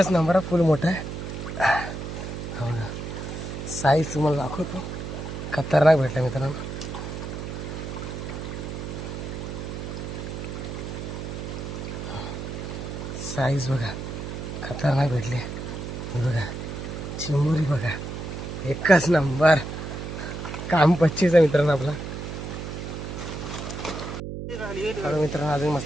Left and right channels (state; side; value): noise; right; hum, 6 dB below the sound